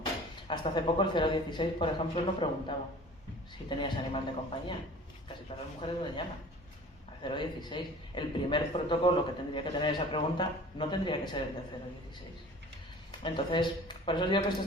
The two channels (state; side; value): normal; both; correlation 0.44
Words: Hasta hace poco el 016, por ejemplo, no preguntaba si tenías animal de compañía. Casi todas las mujeres lo llaman. 016. El primer protocolo que tendría que tener esa pregunta no tendría que ser el de 016. Entonces, por eso digo que esto